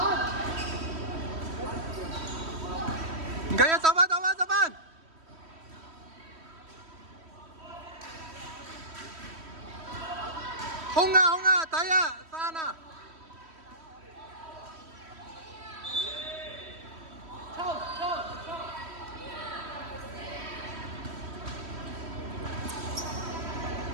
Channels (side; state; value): left; late; 3.1 ms